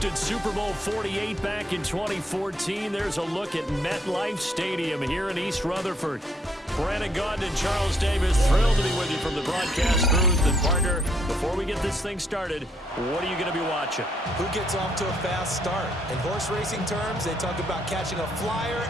Super Bowl 48 back in 2014, there's a look at MetLife Stadium here in East Rutherford. Brandon Gaudin and Charles Davis, thrilled to be with you from the broadcast booth. And partner, before we get this thing started, what are you going to be watching? Who gets off to a fast start? In horse racing terms, they talk about catching a flyer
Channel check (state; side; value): normal; both; correlation 0.71